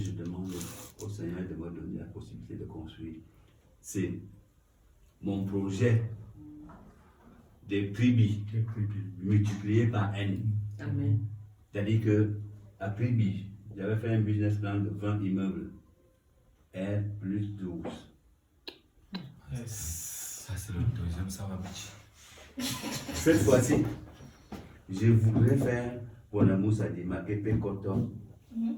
demande au Seigneur de me donner la possibilité de construire, c'est mon projet des tribus multiplié par N. Amen. C'est-à-dire que à Tribi, j'avais fait un business plan de 20 immeubles. R plus 12. Ça, c'est le deuxième, ça va marcher. Cette fois-ci, je voudrais faire Bonamou Sadima, Kepe Koton,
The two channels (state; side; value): identical; both; correlation 1.00